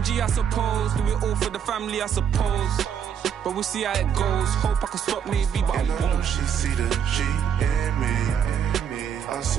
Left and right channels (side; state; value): left; quieter; 8.2 dB